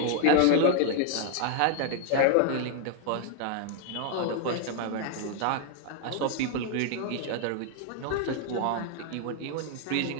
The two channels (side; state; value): both; different; correlation 0.00